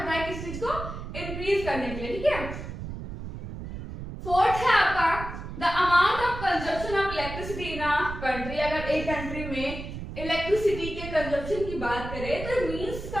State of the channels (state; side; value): noise; right; rumble, 8 dB below the sound